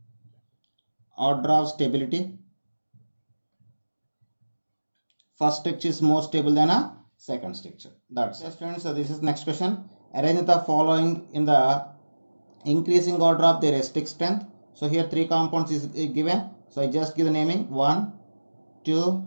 first structure is more stable than a second structure. That's it friends. So this is next question. Arrange the following in the increasing order of their acidic strength. So here three compounds is given. So I just give the naming 1, 2,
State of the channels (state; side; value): inverted; both; correlation -1.00